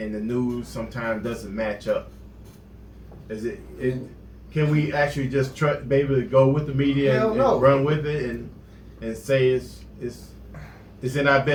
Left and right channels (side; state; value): both; identical; correlation 1.00